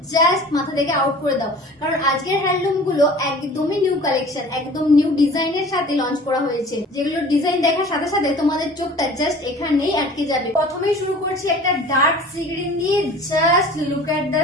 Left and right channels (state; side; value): normal; both; correlation 0.44